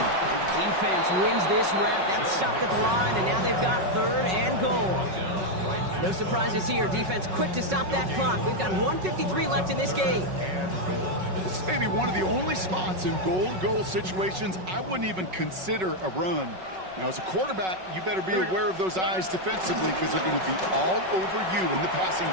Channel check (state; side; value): late; left; 5.4 ms